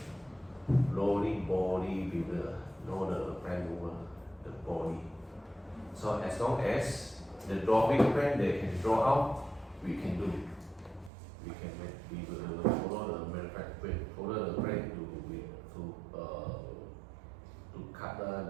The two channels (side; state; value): left; drops out; at 11.1 s